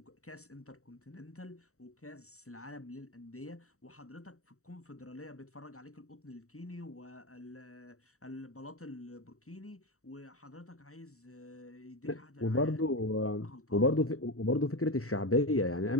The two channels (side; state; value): right; late; 0.64 ms